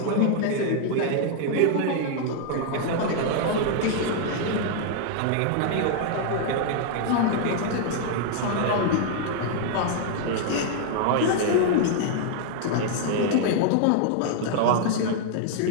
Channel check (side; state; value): both; different; correlation 0.00